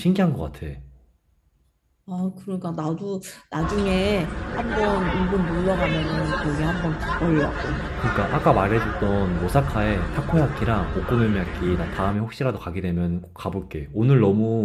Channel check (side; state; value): both; identical; correlation 1.00